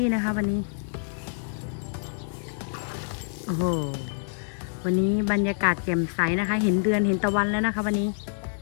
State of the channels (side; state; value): right; silent; digital silence